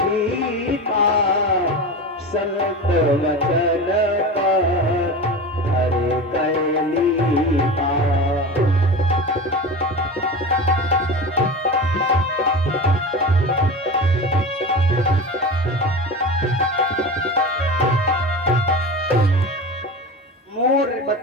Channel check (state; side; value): normal; both; correlation 0.28